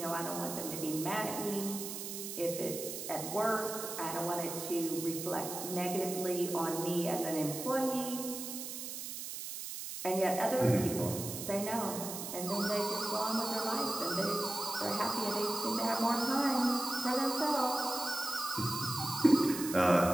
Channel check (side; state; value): right; noise; hiss, 7 dB below the sound